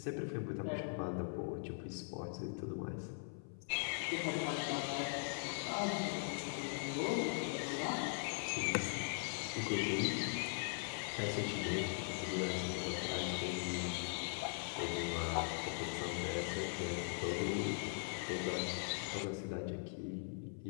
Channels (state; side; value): silent; right; 51 dB below the other